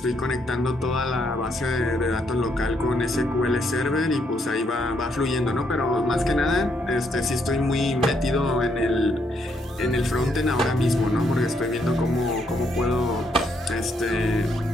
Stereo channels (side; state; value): both; normal; correlation 0.74